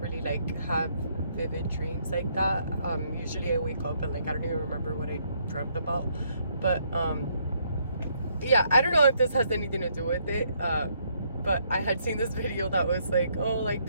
like have vivid dreams like that. Usually I wake up and like I don't even remember what I dreamt about. But yeah, I don't know if this has anything to do with it. But I had seen this video that was like, oh, like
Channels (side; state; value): both; inverted; correlation -0.71